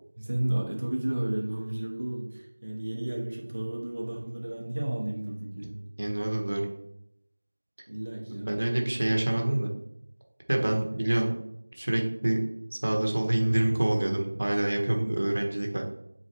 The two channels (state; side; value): inverted; both; correlation -1.00